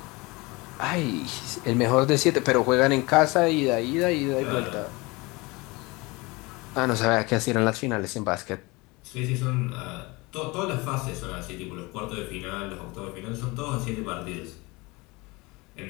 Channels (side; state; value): right; quieter; 24.4 dB